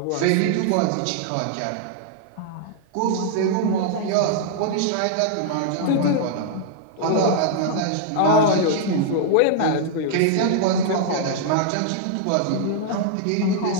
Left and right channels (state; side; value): different; both; correlation -0.01